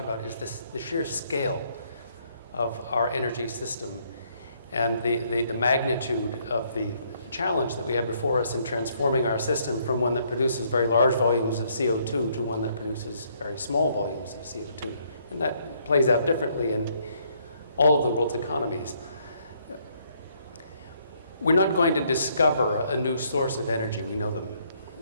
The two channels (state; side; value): inverted; both; correlation -0.69